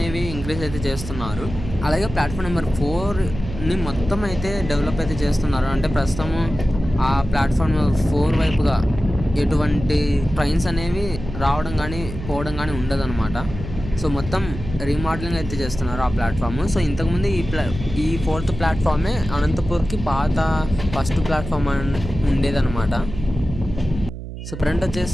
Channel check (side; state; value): right; noise; hum, 9 dB below the sound